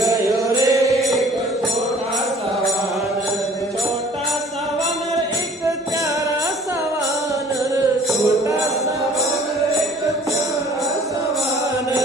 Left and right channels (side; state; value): both; normal; correlation 0.53